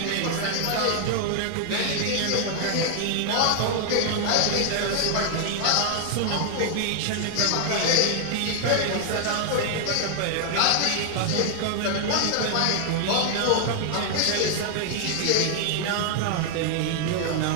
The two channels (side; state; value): both; different; correlation 0.00